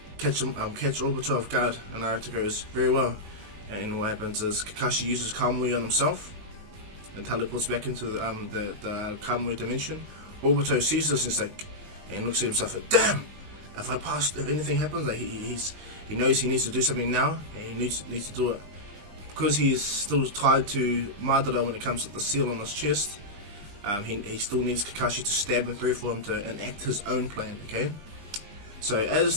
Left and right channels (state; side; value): late; left; 20 ms